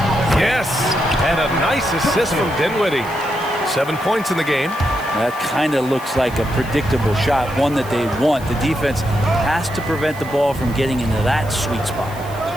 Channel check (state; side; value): noise; left; hiss, 20 dB below the sound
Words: Yes, and a nice assist from Dinwiddie. 7 points in the game. That kind of looks like a predictable shot, one that they want. The defense has to prevent the ball from getting into that sweet spot.